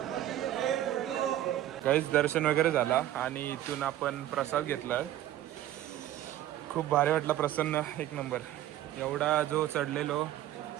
काहीच दर्शन वगैरे झाला आणि इथून आपण प्रसाद घेतला. खूप भारी वाटला, प्रसन्न, एक नंबर. एवढा जो चढलेलो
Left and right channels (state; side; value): quieter; left; 13.1 dB